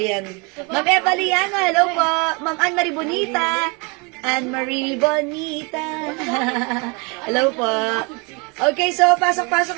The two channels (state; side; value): quieter; left; 29.4 dB